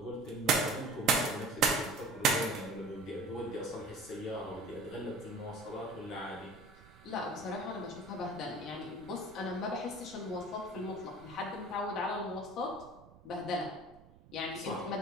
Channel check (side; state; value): right; noise; rumble, 22 dB below the sound